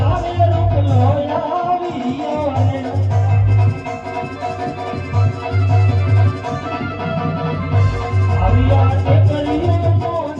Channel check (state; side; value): identical; both; correlation 1.00